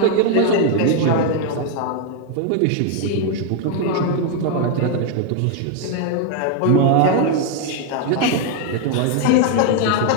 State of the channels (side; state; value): both; different; correlation 0.00